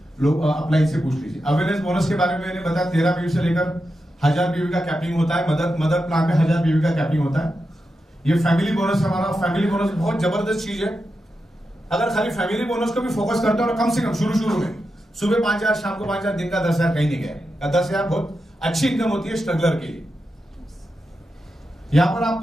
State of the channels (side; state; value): both; normal; correlation 0.88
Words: लोग अप्लाई से पूछ लीजिए। अवेयरनेस बोनस के बारे में मैंने बताया, 13 बीवी से लेकर 1000 बीवी का कैपिंग होता है। मदर प्लान में 1000 बीवी का कैपिंग होता है। ये फैमिली बोनस हमारा, फैमिली बोनस बहुत जबरदस्त चीज है। अगर खाली फैमिली बोनस को भी फोकस करते हो, कम से कम शुरू में सुबह 5000, शाम को 5000, दिन का 10,000 कहीं नहीं गया। 10,000 बहुत अच्छी इनकम होती है स्ट्रगलर के लिए। यहां पर